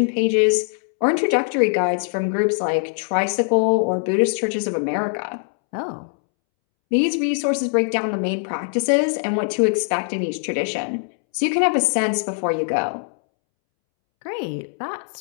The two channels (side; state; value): right; silent; 64 dB below the other